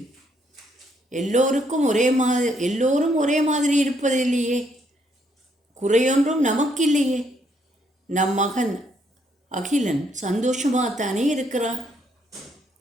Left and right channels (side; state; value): both; normal; correlation 0.72